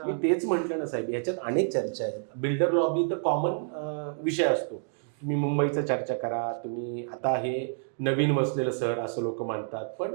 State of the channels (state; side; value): silent; left; digital silence